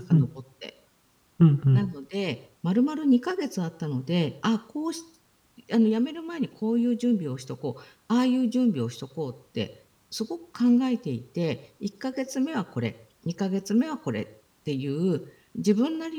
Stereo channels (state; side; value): identical; both; correlation 1.00